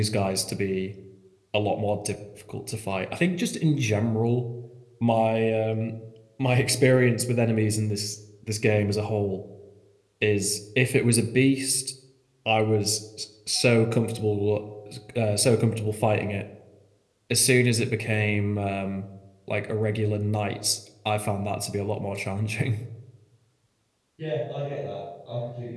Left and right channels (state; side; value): identical; both; correlation 1.00